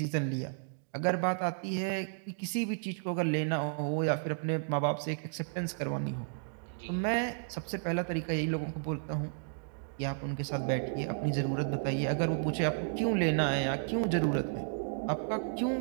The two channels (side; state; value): left; silent; digital silence